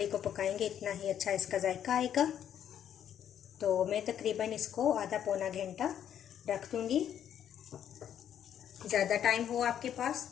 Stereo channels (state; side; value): quieter; right; 9.7 dB